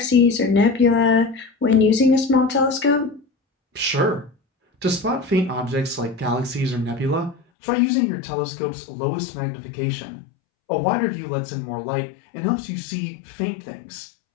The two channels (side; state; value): right; drops out; at 7.4 s